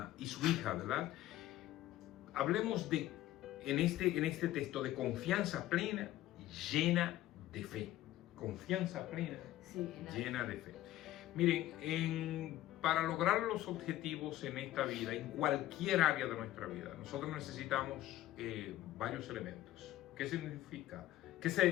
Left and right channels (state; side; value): quieter; right; 14.6 dB